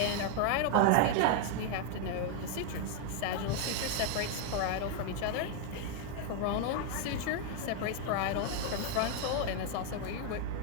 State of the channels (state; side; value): different; both; correlation 0.01